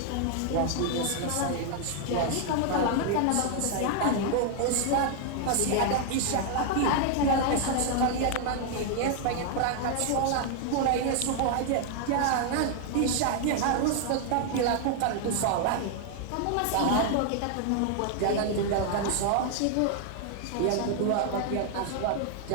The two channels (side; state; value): both; different; correlation 0.00